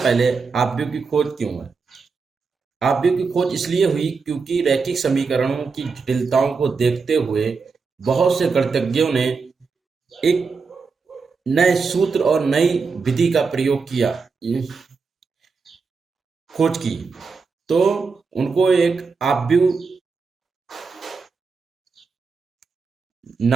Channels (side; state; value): left; quieter; 4.8 dB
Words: आव्यूह की खोज क्यों है? आव्यूह की खोज इसलिए हुई क्योंकि रैखिक समीकरणों की जटिलताओं को देखते हुए बहुत से गणितज्ञों ने एक नए सूत्र और नई विधि का प्रयोग किया, खोज की। तो उनको एक आव्यूह